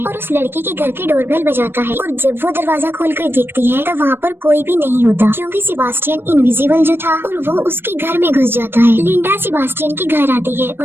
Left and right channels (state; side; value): late; left; 0.10 ms